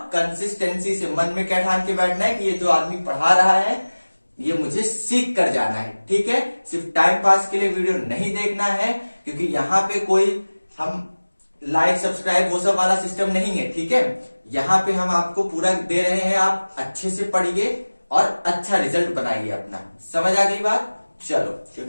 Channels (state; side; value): inverted; both; correlation -1.00